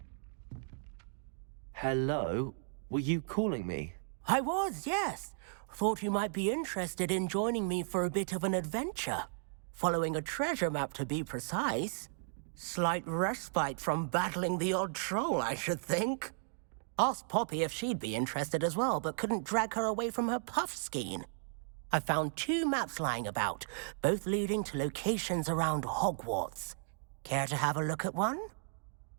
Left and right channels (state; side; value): silent; left; digital silence